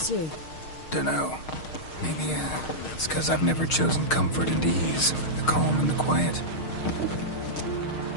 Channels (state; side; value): late; right; 6.5 ms